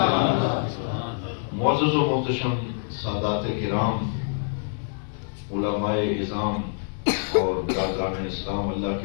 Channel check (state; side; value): silent; right; digital silence